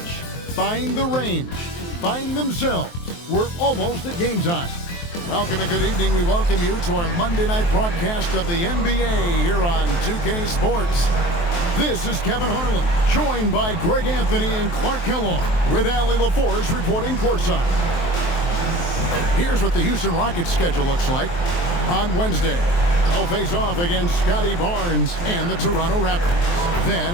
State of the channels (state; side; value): late; right; 23 ms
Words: Find the range. Find themselves. We're almost at game time. Welcome and good evening. We welcome you to our Monday night broadcast of the NBA here on 2K Sports. This is Kevin Harlan, joined by Greg Anthony and Clark Kellogg, with Allie LaForce reporting courtside. Here's what the Houston Rockets schedule looks like. On Wednesday, they'll face off against Scotty Barnes and the Toronto Raptors. Then